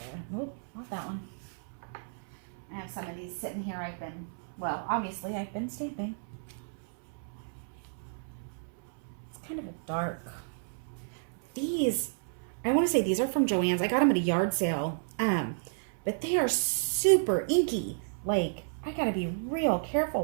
Nope, not that one. I have some of these sitting here. Obviously I've been stamping. It's kind of a dark. These, I want to say these are from Joann's. I got them at a yard sale. But they are super inky. Like, I gotta be real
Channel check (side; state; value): left; silent; 57 dB below the other